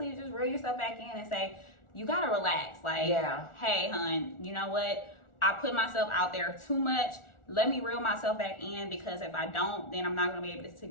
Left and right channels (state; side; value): late; right; 1.4 ms